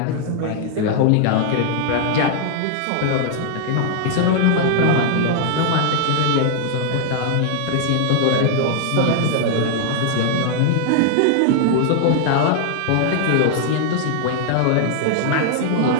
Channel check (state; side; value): different; both; correlation 0.00